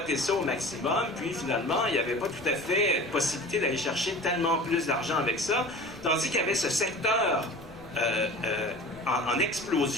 ça au maximum, puis finalement, il n'y avait pas tout à fait possibilité d'aller chercher tellement plus d'argent avec ça, tandis qu'il y avait ce secteur en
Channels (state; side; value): noise; right; rumble, 21 dB below the sound